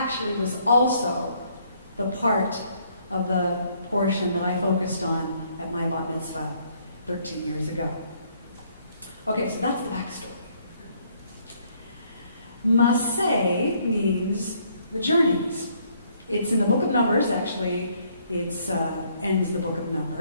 was also the part of the portion that I focused on at my bat mitzvah 13 years ago. Okay, so that's the backstory. Masei means the journeys. It's in the book of Numbers, actually. It ends the book of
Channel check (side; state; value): both; inverted; correlation -0.67